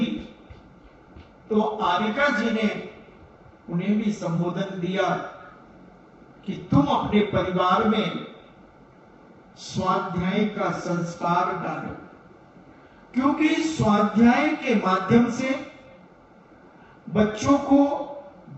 तो आरिका जी ने उन्हें भी संबोधन दिया कि तुम अपने परिवार में स्वाध्याय का संस्कार डालो, क्योंकि स्वाध्याय के माध्यम से बच्चों को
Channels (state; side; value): identical; both; correlation 1.00